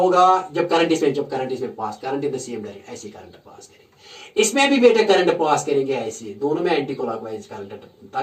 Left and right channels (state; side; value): identical; both; correlation 1.00